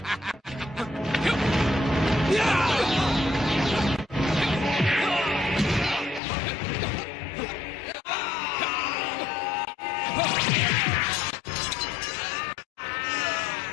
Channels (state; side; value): drops out; right; at 6.2 s